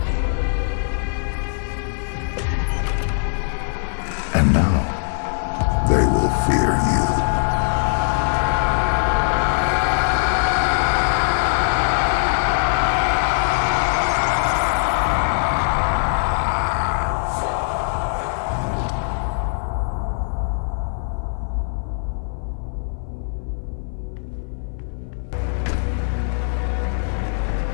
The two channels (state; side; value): silent; right; 59 dB below the other